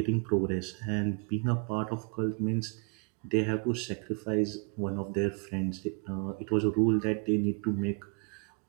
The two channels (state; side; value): quieter; left; 36.5 dB